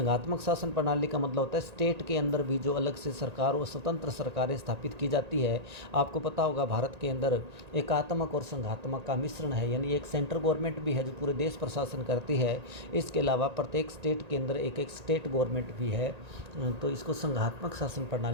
शासन प्रणाली का मतलब होता है स्टेट के अंदर भी जो अलग से सरकार और स्वतंत्र सरकारें स्थापित की जाती है। आपको पता होगा भारत के अंदर एकात्मक और संघात्मक का मिश्रण है, यानी एक सेंट्रल गवर्नमेंट भी है जो पूरे देश पर शासन करती है। इसके अलावा प्रत्येक स्टेट के अंदर एक एक स्टेट गवर्नमेंट भी है, तो इसको संघात्मक शासन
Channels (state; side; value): late; left; 1.8 ms